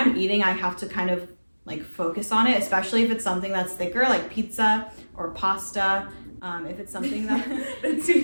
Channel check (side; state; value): both; inverted; correlation -1.00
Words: eating, I have to kind of like focus on it, especially if it's something that's thicker, like pizza or pasta. If it's something that